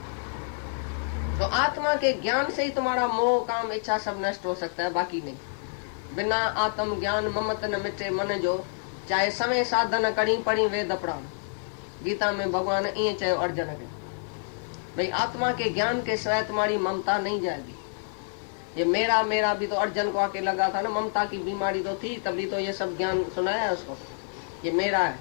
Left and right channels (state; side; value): silent; right; digital silence